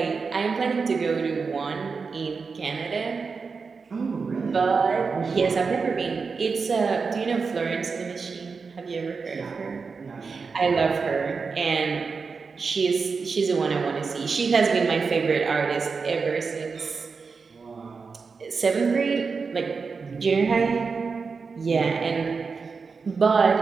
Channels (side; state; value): left; quieter; 4.9 dB